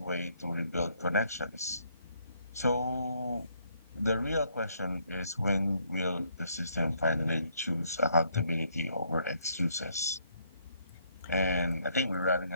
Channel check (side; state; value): both; inverted; correlation -0.70